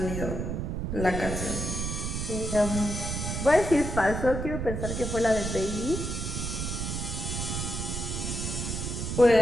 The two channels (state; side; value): noise; right; rumble, 3 dB below the sound